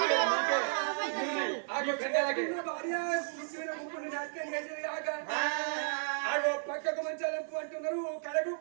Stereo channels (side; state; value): left; silent; 55 dB below the other